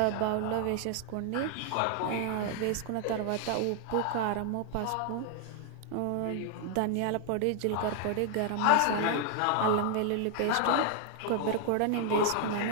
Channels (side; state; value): both; different; correlation 0.00